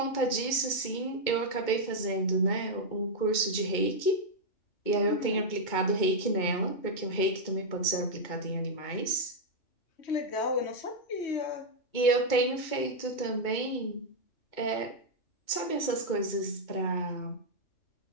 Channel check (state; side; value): late; right; 2.2 ms